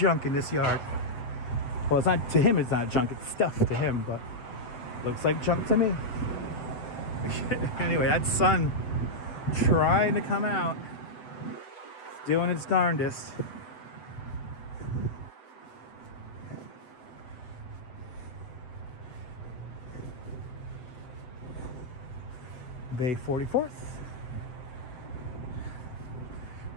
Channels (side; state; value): right; late; 8.0 ms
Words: in this yard. Well, it's not, to him it's not junk, it's stuff to him, but looks like junk to me. Anyway, that sun trying to come out. It's doing its darndest. Bay 44th.